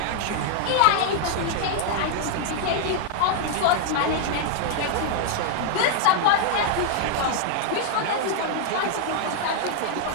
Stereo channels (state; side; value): different; both; correlation -0.01